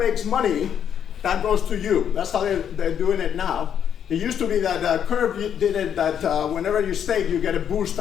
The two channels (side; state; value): right; quieter; 8.8 dB